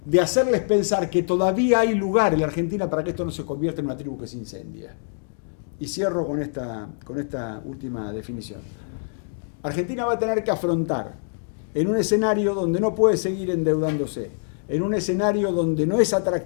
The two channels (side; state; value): right; silent; digital silence